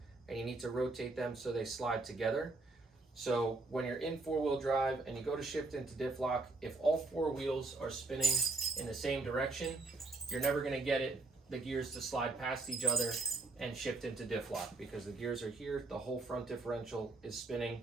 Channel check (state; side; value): quieter; left; 3.3 dB